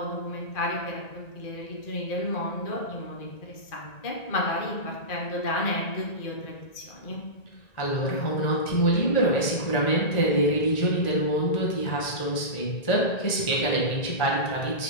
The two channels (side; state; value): right; late; 1.9 ms